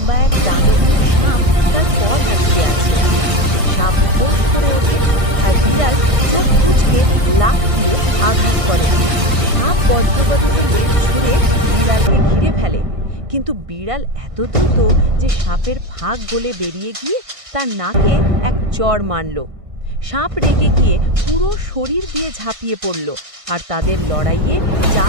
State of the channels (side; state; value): left; late; 1.6 ms